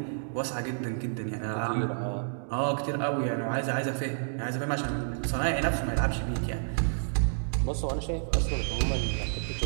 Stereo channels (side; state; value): left; silent; digital silence